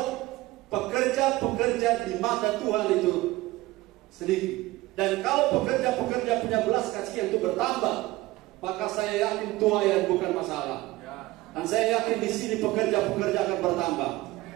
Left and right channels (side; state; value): left; quieter; 18.9 dB